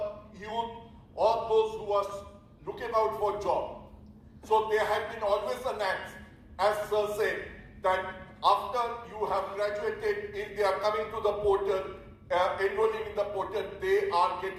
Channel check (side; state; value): both; identical; correlation 1.00